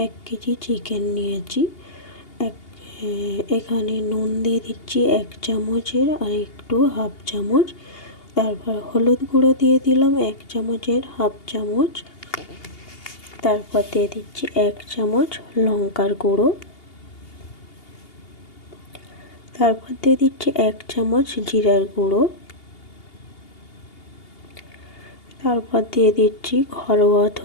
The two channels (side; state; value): right; late; 2.8 ms